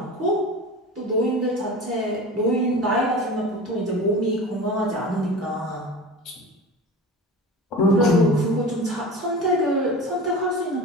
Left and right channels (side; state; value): both; normal; correlation 0.33